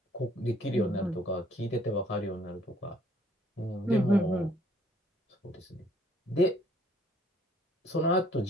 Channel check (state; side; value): normal; both; correlation 0.62